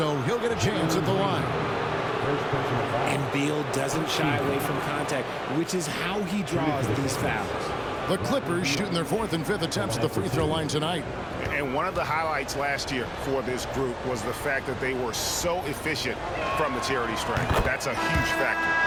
he'll get a chance at the line. And Beal doesn't shy away from contact, which is how he draws these fouls. The Clippers shooting their 4th and 5th attempts at the free throw line tonight. And one of the highlights last year for this group was the fact that they were so efficient from the charity stripe. That's a huge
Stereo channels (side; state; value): both; identical; correlation 1.00